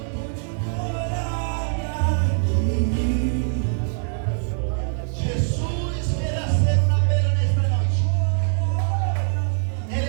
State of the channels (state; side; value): silent; left; 63 dB below the other